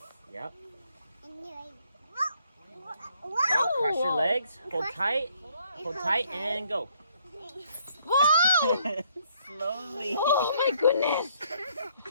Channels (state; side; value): inverted; both; correlation -0.67